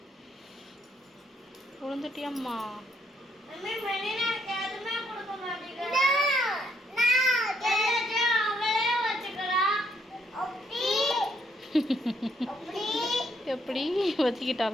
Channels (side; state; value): both; normal; correlation 0.72